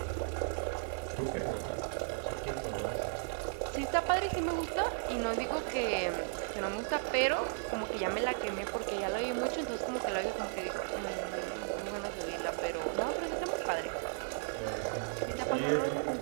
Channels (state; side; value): silent; left; digital silence